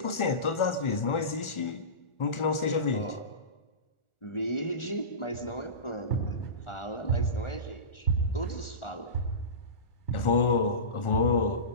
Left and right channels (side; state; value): right; late; 1.4 ms